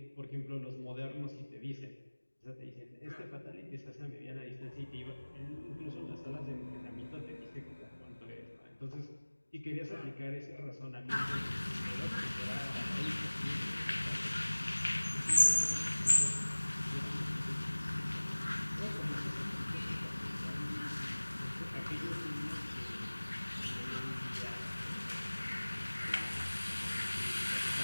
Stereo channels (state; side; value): inverted; both; correlation -1.00